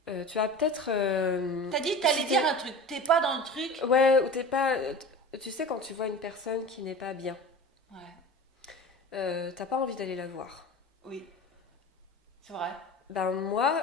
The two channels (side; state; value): both; normal; correlation 0.35